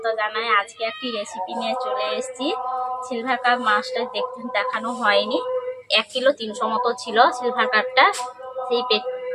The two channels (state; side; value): identical; both; correlation 1.00